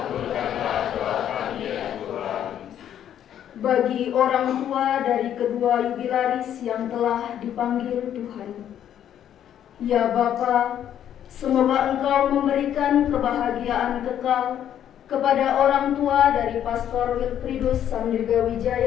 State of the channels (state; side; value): quieter; right; 10.2 dB